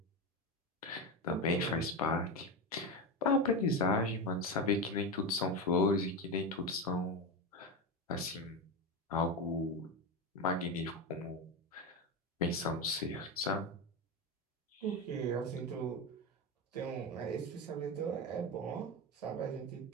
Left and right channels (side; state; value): both; normal; correlation 0.16